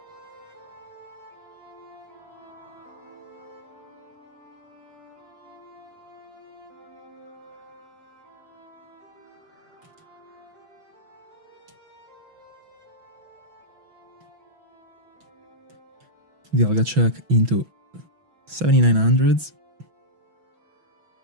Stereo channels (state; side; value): late; left; 6.1 ms